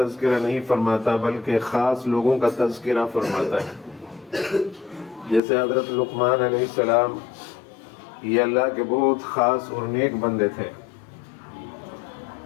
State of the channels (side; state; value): right; drops out; at 5.4 s